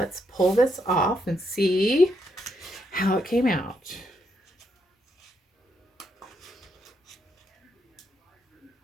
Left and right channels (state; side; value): normal; both; correlation 0.77